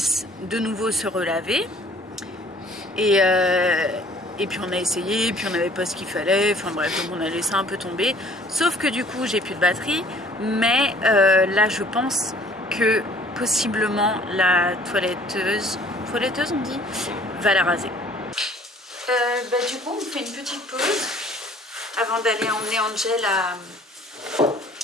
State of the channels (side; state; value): both; normal; correlation 0.54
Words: de nouveau se relaver. Et puis on a essayé, puis on n'avait pas ce qu'il fallait, enfin bref, donc on a laissé un peu tomber. Sauf que du coup, j'ai plus de batterie, mais là je pense que possiblement la toiletteuse on dit, va la raser. Du coup, on fait une petite pause avant d'aller emmener Angel